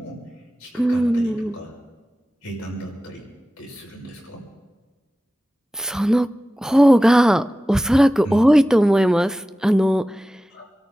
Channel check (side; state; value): both; normal; correlation 0.96